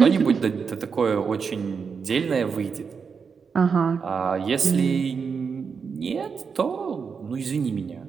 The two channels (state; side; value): quieter; left; 5.8 dB